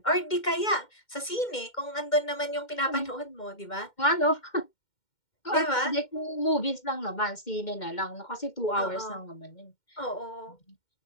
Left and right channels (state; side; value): late; right; 2.1 ms